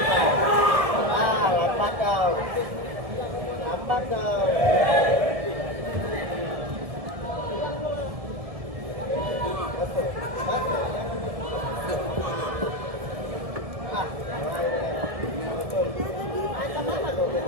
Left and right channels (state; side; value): late; left; 1.7 ms